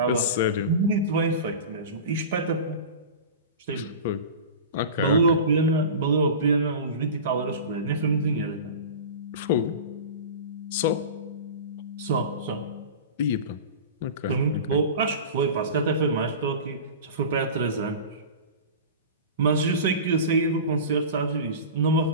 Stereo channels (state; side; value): inverted; both; correlation -0.32